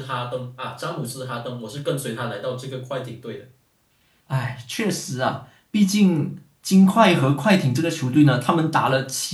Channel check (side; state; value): both; identical; correlation 1.00